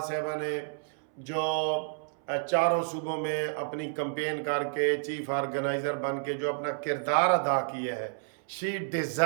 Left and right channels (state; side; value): silent; left; 58 dB below the other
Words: साहिबा ने जो चारों सूबों में अपनी कंपेन करके चीफ ऑर्गेनाइज़र बन के जो अपना किरदार अदा किया है, शी